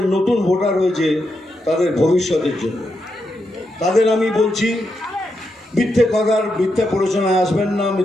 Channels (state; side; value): normal; both; correlation 0.84